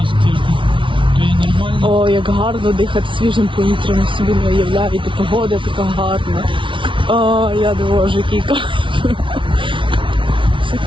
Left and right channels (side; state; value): left; late; 0.25 ms